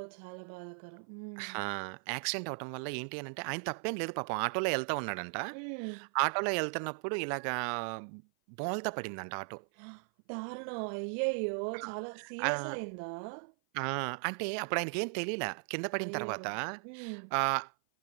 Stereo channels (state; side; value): silent; left; 53 dB below the other